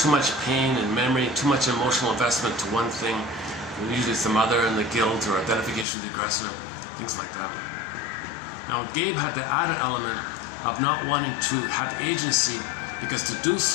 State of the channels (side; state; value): right; drops out; at 5.9 s